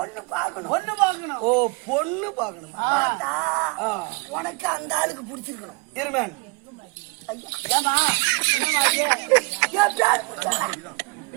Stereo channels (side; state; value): left; quieter; 28.9 dB